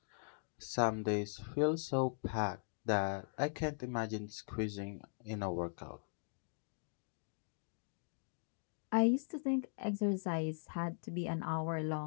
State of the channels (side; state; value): right; silent; digital silence